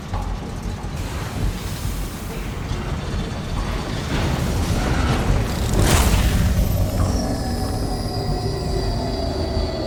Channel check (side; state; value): both; identical; correlation 1.00